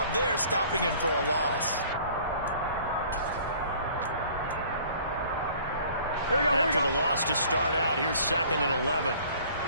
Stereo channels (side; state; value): both; inverted; correlation -0.52